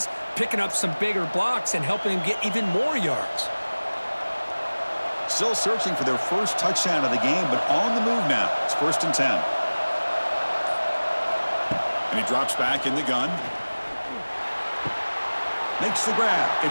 picking up some bigger blocks and helping them get even more yards. Still searching for their first touchdown of the game, but on the move now. It's 1st and 10. And he drops back in the gun. Makes the grab.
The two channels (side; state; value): both; inverted; correlation -1.00